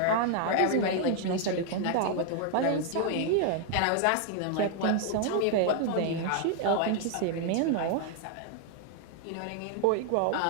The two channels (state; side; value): different; both; correlation 0.00